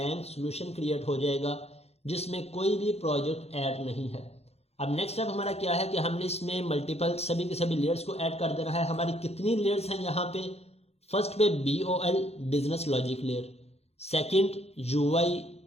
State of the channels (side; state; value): right; late; 0.30 ms